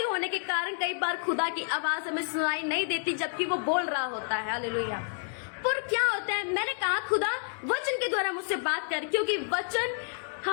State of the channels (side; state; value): right; silent; 58 dB below the other